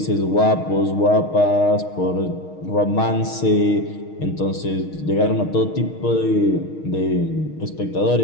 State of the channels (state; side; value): late; right; 6.4 ms